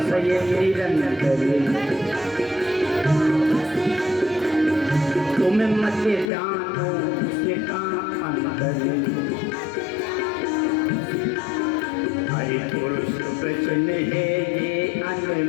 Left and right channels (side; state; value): right; drops out; at 6.3 s